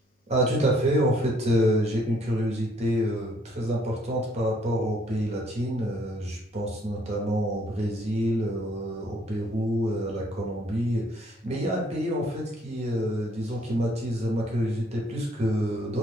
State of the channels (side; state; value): both; normal; correlation 0.64